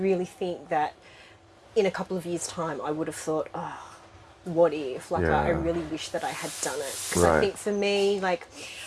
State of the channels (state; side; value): identical; both; correlation 1.00